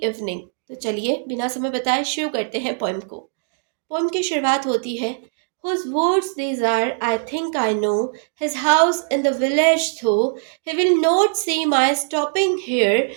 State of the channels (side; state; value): left; silent; digital silence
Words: evening. तो चलिए बिना समय बताए शुरू करते हैं पोएम को। पोएम की शुरुआत होती है, Whose words these are, I think I know, his house in the village though, he will not see my stopping here